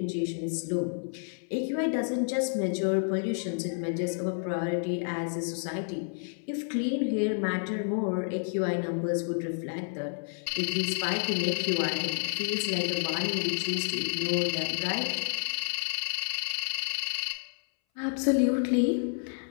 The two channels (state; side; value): silent; right; 58 dB below the other